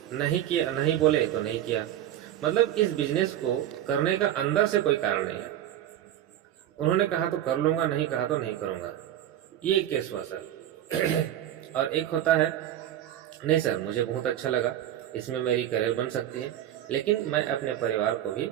नहीं किया, नहीं बोले तो नहीं किया। मतलब इस बिजनेस को करने का अंदर से कोई कारण नहीं है। उन्होंने कहा तो कर लूँगा, नहीं कहा तो नहीं करूँगा, ये एक केस हुआ सर। और एक होता है नहीं सर, मुझे बहुत अच्छा लगा, इसमें मेरी करियर बन सकती है, लेकिन मैं अपने परिवार को भी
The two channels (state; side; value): quieter; left; 11.9 dB